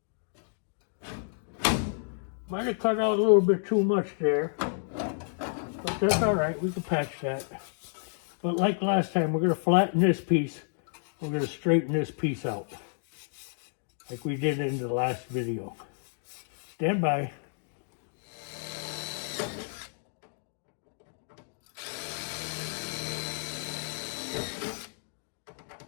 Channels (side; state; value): right; silent; digital silence